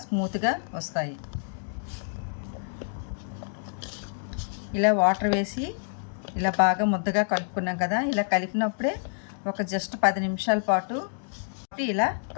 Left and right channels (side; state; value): right; silent; digital silence